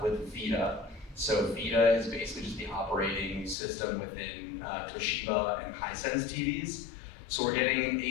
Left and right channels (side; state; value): right; drops out; at 3.6 s